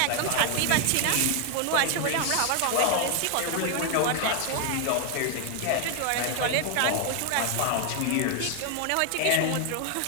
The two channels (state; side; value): different; both; correlation 0.00